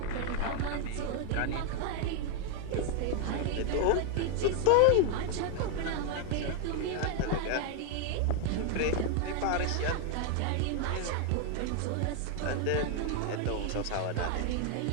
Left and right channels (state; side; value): different; both; correlation 0.00